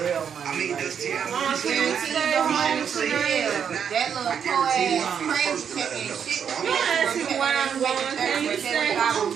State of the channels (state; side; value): quieter; left; 7.7 dB